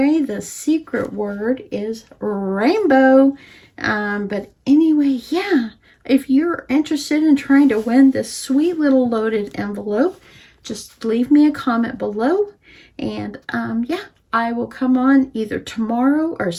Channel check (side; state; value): both; identical; correlation 1.00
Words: the secret word is rainbow. But anyway, yeah, if you're interested in trying to win this sweet little loaded envelope, just leave me a comment below. And yeah, I will come on either tomorrow or